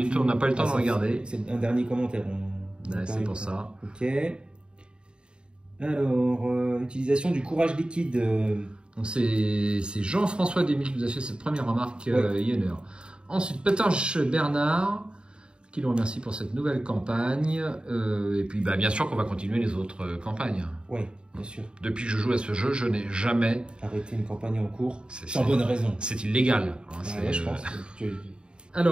on n'a pas eu le temps de regarder. C'est un dernier commentaire. C'est pour ça. Ok. Alors, utilisation du courage liquide. Donc c'est Jean-François Desmille qui nous a fait cette première remarque il y a une heure. Ensuite, Petanche Bernard, qui nous remercie pour cette nouvelle campagne. Et puis, bah, bien sûr qu'on va continuer les autres campagnes. Oui, bien sûr. Depuis que je joue à ce jeu, je n'ai jamais arrêté une campagne en cours. Sans bonne raison. C'est illégal. Ouais, je pense.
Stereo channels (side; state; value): left; late; 0.051 ms